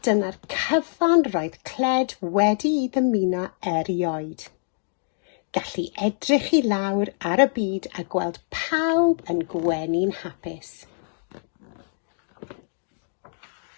dyna'r cyfan roedd Cled wedi I ddymuno erioed. Gallu edrych I lawr ar y byd a gweld pawb yn gwenu'n hapus.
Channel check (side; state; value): right; silent; digital silence